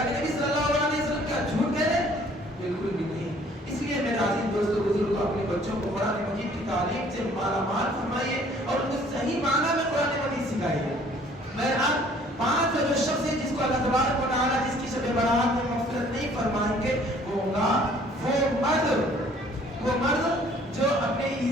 کے نبی صلی اللہ علیہ وسلم کیا جھوٹ کہہ رہے؟ بالکل بھی نہیں۔ اس لیے میرے عزیز دوستو بزرگوں، اپنے بچوں کو قرآن مجید کی تعلیم سے مالا مال فرمائیے اور ان کو صحیح معنی میں قرآن مجید سکھائیے۔ بہرحال پانچ جو شخص ہے جس کو اللہ تبارک و تعالیٰ جس کی شب برات میں مغفرت نہیں فرمائیں گے وہ ہوگا وہ مرد جو اپنے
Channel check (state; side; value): normal; both; correlation 0.57